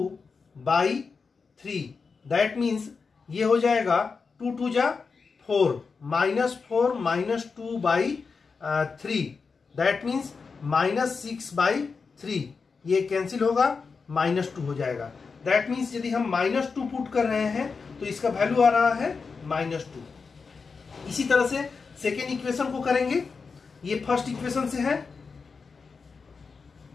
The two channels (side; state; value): right; quieter; 5.0 dB